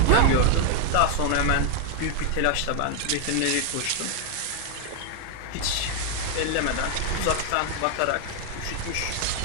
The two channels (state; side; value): different; both; correlation 0.00